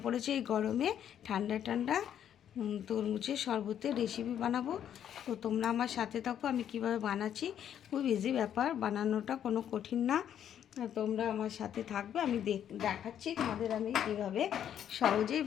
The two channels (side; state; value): right; quieter; 9.7 dB